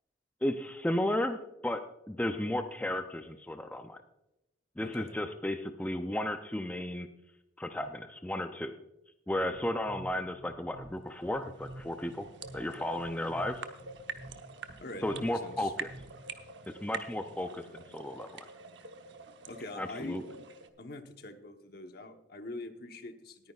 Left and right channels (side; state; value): both; normal; correlation 0.77